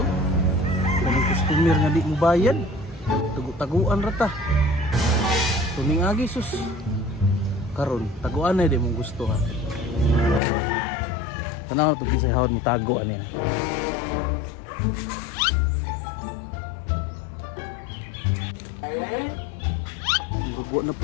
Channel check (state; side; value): drops out; right; at 10.4 s